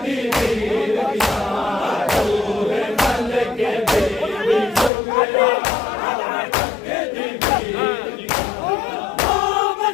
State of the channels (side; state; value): right; drops out; at 4.9 s